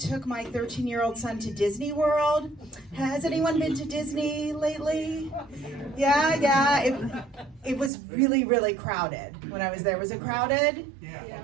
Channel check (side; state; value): left; drops out; at 7.9 s